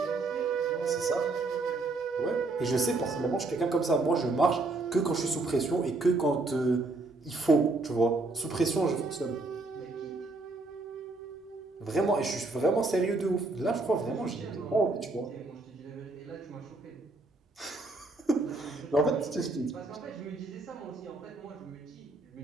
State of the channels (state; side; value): quieter; left; 3.3 dB